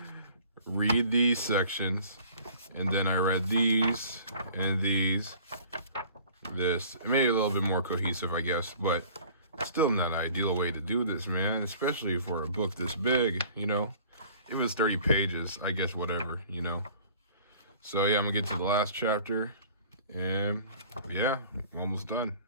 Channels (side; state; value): both; inverted; correlation -0.50